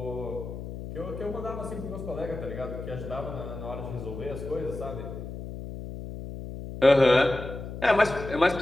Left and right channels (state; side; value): noise; left; hum, 9 dB below the sound